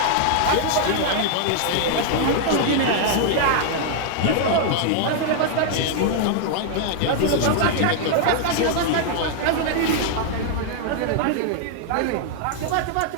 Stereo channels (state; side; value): different; both; correlation 0.00